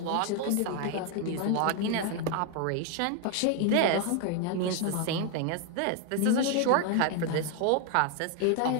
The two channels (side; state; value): both; different; correlation 0.01